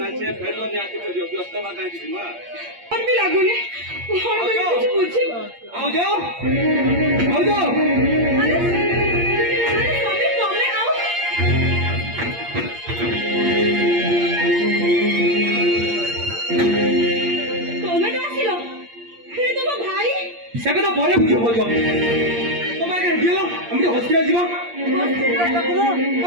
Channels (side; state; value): left; late; 8.6 ms